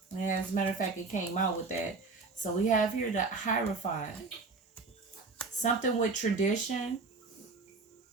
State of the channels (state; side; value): quieter; left; 4.0 dB